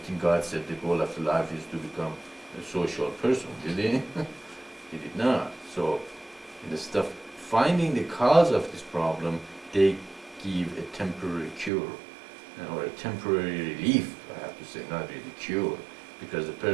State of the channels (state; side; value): drops out; left; at 11.7 s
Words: think God said the goal of life is to become a social person, did He? He did not. So, instead of finding the cause of this problem, they give a temporary cure or a temporary relief, I have to say, not really cure, because the